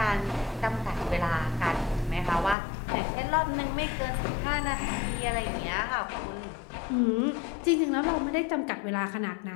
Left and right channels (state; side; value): drops out; right; at 2.6 s